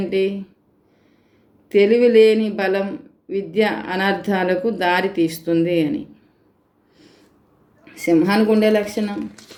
తెలివి లేని బలం విద్య అనర్థాలకు దారి తీస్తుంది అని. సింహానికి ఉండే లక్షణం,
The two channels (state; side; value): identical; both; correlation 1.00